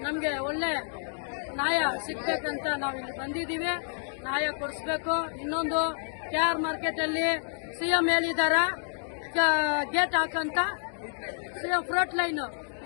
ನಮ್ಗೆ ಒಳ್ಳೆ ನ್ಯಾಯ ಸಿಗ್ಬೇಕಂತ ನಾವು ಇಲ್ಲಿ ಬಂದಿದ್ದೀವಿ. ನ್ಯಾಯ ಕೊಡಿಸ್ಬೇಕು. ಇನ್ನೊಂದು KR ಮಾರ್ಕೆಟ್ ಅಲ್ಲಿ CM ಹೇಳಿದಾರ ಗೇಟ್ ಹಾಕಂತ. CM ಫ್ರೂಟ್ ಲೈನ್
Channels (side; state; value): right; silent; digital silence